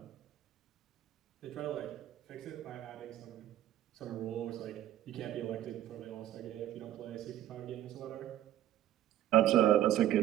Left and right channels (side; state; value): left; quieter; 12.7 dB